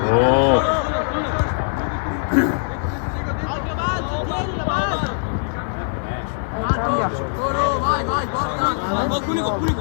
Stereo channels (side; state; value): right; silent; digital silence